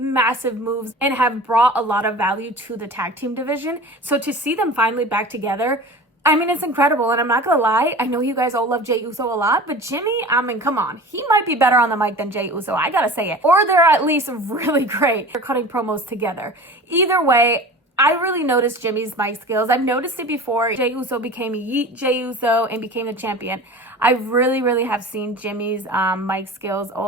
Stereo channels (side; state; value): both; normal; correlation 0.37